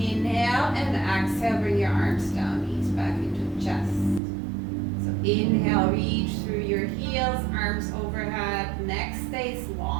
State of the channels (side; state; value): left; drops out; at 4.2 s